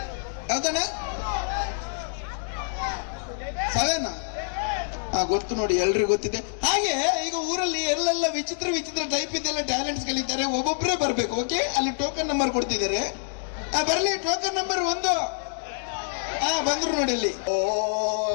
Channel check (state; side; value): silent; right; digital silence